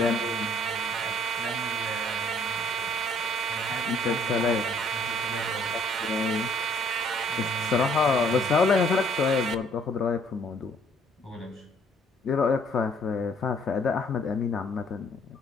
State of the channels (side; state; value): both; normal; correlation 0.62